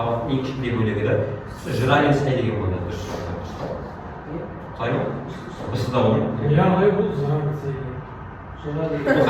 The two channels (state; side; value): identical; both; correlation 1.00